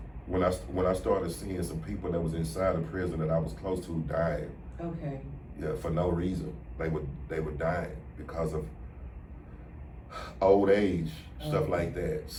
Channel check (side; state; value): both; identical; correlation 1.00